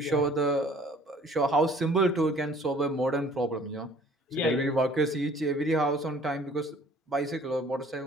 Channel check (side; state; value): both; normal; correlation 0.54